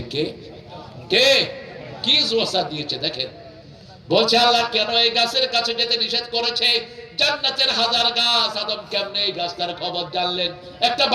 কে? কে? কি ওয়াসওয়াসা দিয়েছে দেখেন। বলছে আল্লাহ কেন এই গাছের কাছে যেতে নিষেধ করেছে? জান্নাতের হাজার গাছ, আদম কেমনে এই গাছটার খবর জানলেন? একটা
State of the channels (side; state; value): both; identical; correlation 1.00